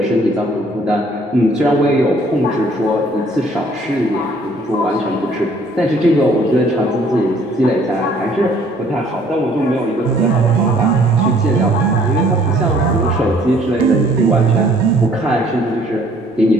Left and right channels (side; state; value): both; normal; correlation 0.59